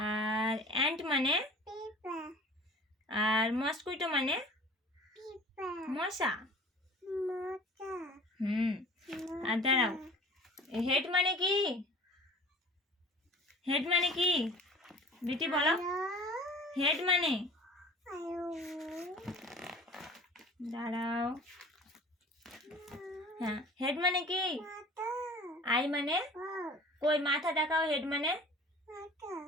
অ্যান্ট মানে, আর মস্কুইটো মানে মশা। আর দাঁড়াও, হেড মানে কি? হেড মানে কি বিটি বলো, হেড মানে, দাঁড়াও, হ্যাঁ, হেড মানে কি? আই মানে, কই মাথা দেখাও, হেড মানে,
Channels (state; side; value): normal; both; correlation 0.44